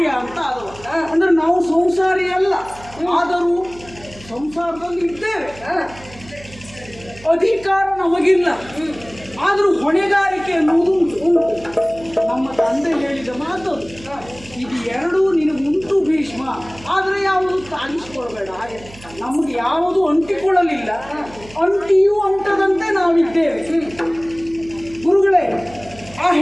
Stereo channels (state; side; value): noise; right; hum, 20 dB below the sound